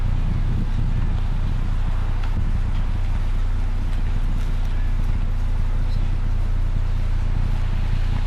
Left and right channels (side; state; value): both; identical; correlation 1.00